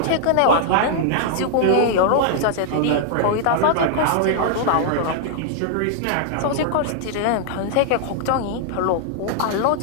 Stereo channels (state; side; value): different; both; correlation -0.01